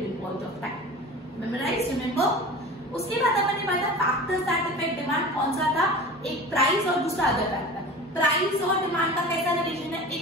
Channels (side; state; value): both; normal; correlation 0.35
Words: point of time. Memorize, remember? उसके बाद अपन ने पढ़ा factors that affect demand, कौन सा था, एक price और दूसरा अदर फैक्टर। प्राइस और डिमांड का कैसा रिलेशन है,